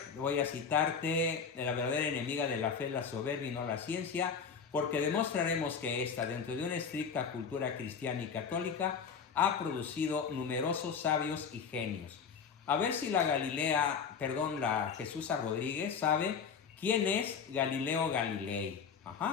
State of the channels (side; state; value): right; quieter; 6.3 dB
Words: voy a citarte: la verdadera enemiga de la fe es la soberbia y no la ciencia, porque demostraremos que esta, dentro de una estricta cultura cristiana y católica, ha producido numerosos sabios y genios. A ver si la Jesús A. Rodríguez sabe quién es Galileo Galilei.